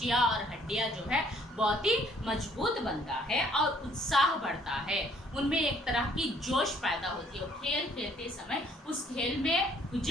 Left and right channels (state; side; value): normal; both; correlation 0.62